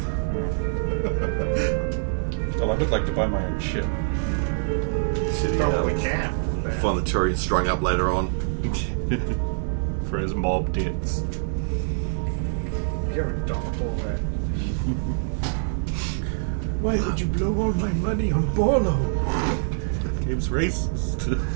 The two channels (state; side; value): silent; left; digital silence